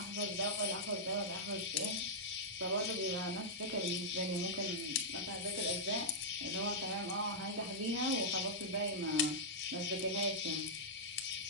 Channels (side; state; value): both; normal; correlation -0.09